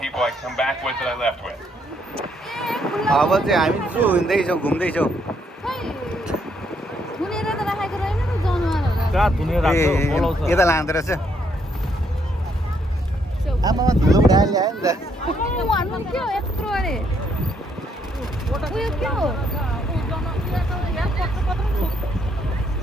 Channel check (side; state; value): both; normal; correlation 0.72